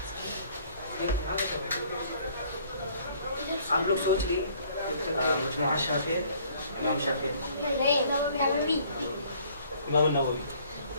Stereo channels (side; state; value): both; inverted; correlation -0.59